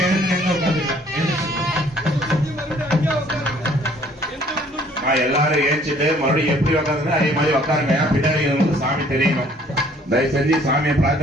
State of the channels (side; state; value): both; normal; correlation 0.58